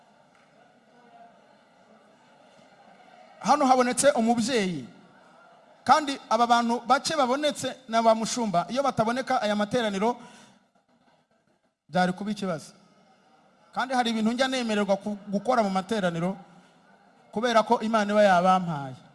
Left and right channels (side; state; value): both; identical; correlation 1.00